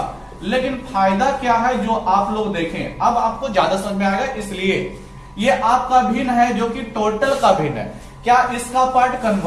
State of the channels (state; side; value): identical; both; correlation 1.00